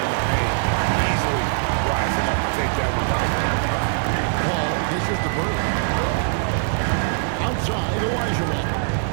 the paint, easily rising up to take that one home. Paul dishes to Bird. Outside, Olajuwon.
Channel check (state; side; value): silent; left; digital silence